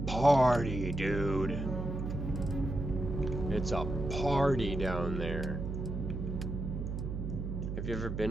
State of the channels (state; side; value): noise; right; hum, 4 dB below the sound